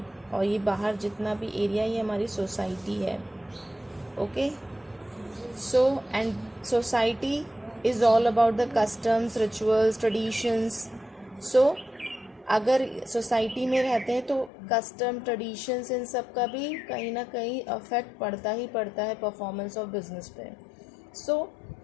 और ये बाहर जितना भी एरिया ये हमारी society है okay so and society is all about the customs rituals traditions so अगर society में रहते हैं तो कस्टम ट्रेडिशंस इन सब का भी कहीं ना कहीं अफेक्ट पड़ता ही पड़ता है परफॉर्मेंस ऑफ बिजनेस पे so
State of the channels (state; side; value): drops out; right; at 14.5 s